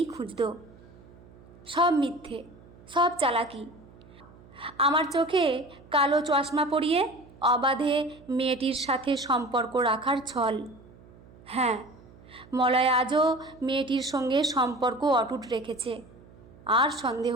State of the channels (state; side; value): noise; right; hum, 23 dB below the sound